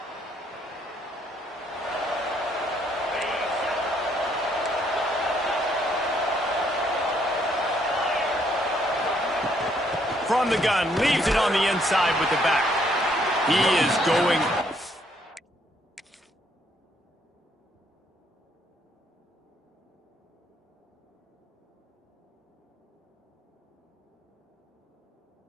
From the gun, leaves it on the inside with the back. He is going.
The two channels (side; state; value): both; normal; correlation 0.69